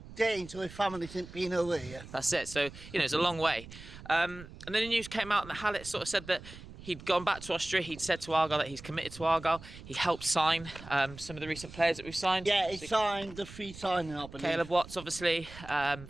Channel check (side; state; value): right; noise; rumble, 16 dB below the sound